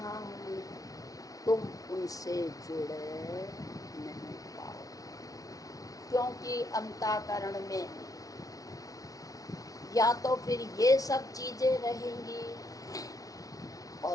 हूँ, तुम उनसे जुड़ नहीं पाओ, क्योंकि अंतःकरण में या तो फिर ये सब चीजें रहेंगी,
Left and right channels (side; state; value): right; late; 0.18 ms